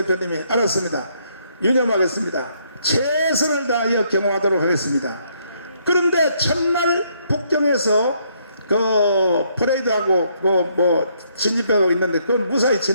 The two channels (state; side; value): inverted; both; correlation -0.71